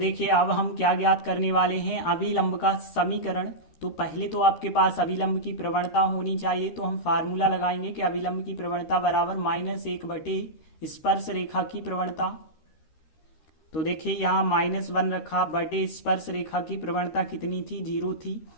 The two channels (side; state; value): right; late; 13 ms